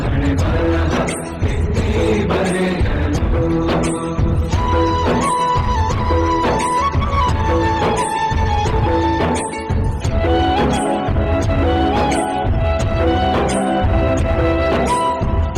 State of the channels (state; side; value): identical; both; correlation 1.00